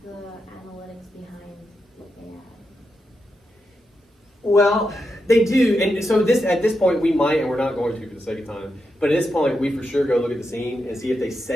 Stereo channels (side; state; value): both; normal; correlation 0.86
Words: the analytics behind AI. Well, they do, and so at this point we might, and we're not going to for the sake of time, but at this point we for sure go look at the scene and see if they